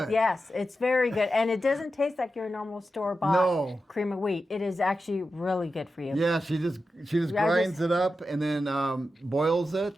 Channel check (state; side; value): normal; both; correlation 0.91